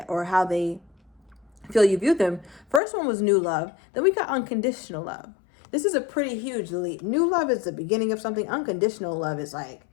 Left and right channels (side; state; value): right; drops out; at 2.8 s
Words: or how they feel you view them, first one was new love. Then we got unconditional love. This is a pretty huge leap. New love is the beginning of something. Unconditional love is like,